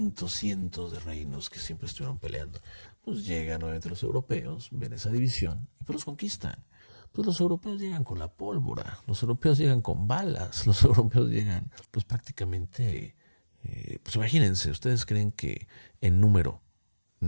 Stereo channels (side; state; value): both; inverted; correlation -1.00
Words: de reinos que siempre estuvieron peleando. Pues llegan nuevamente los europeos, ven esa división y pues los conquistan. Pues los europeos llegan con la pólvora, los europeos llegan con balas, los europeos llegan pues prácticamente, pues imagínense, ¿ustedes creen que en número